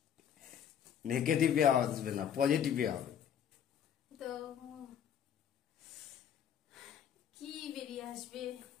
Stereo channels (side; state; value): right; quieter; 9.1 dB